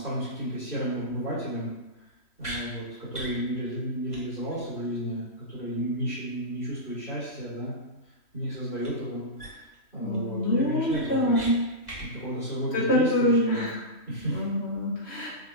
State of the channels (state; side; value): late; right; 3.1 ms